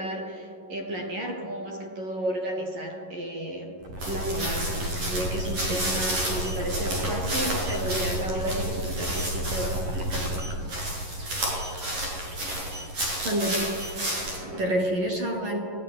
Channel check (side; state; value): left; late; 11 ms